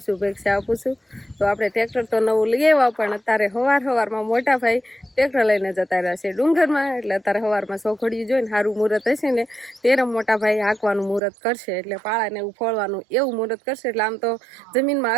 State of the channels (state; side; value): drops out; left; at 11.2 s